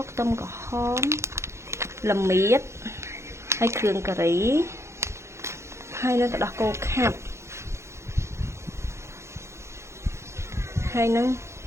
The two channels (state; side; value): late; left; 0.13 ms